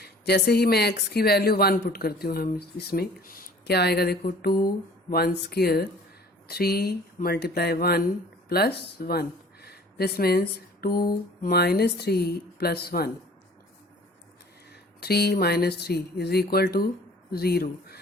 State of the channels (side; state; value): both; normal; correlation 0.50